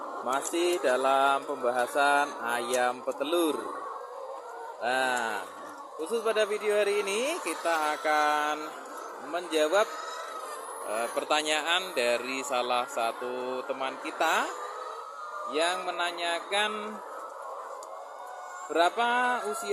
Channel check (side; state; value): both; identical; correlation 1.00